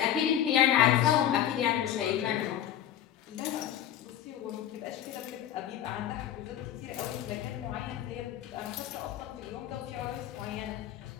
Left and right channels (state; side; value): quieter; right; 10.9 dB